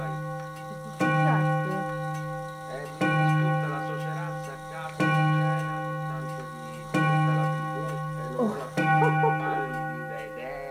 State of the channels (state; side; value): identical; both; correlation 1.00